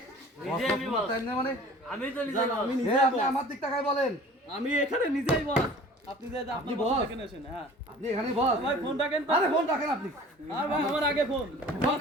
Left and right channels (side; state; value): both; normal; correlation 0.45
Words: বস কোনো টাইম নেই মানে? আমি তো নিজে আমি এ নিজে আপনি আমার দিক তাকায় বলেন। আমি এখানে নিজেই বস। আপনি যে আপনি আপনি boss? বস এখানে আসেন। হ্যাঁ আপনি এখানে বস? ভাই ফোন রাখেন তো। আরে ফোন রাখেন আপনি। আর ভাই আমার আগে ফোন। ফোন